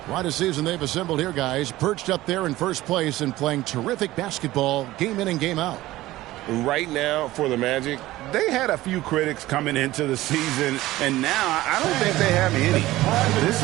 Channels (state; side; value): quieter; left; 16.8 dB